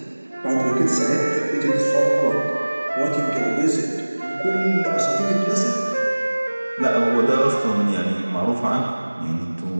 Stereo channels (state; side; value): inverted; both; correlation -1.00